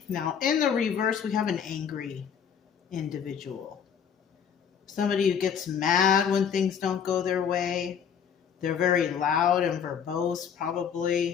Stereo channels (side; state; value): right; quieter; 7.6 dB